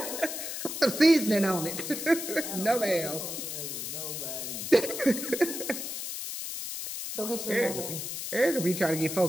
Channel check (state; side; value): noise; left; hiss, 5 dB below the sound